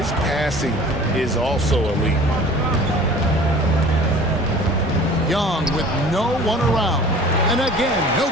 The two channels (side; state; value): both; normal; correlation 0.45